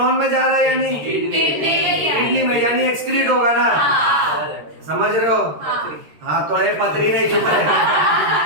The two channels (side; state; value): left; late; 13 ms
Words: में जा रहा है यानी किडनी में, यानी एक्सक्रीट होगा ना? समझ रहे हो? हाँ, थोड़े पतरी नहीं, चुप रहे।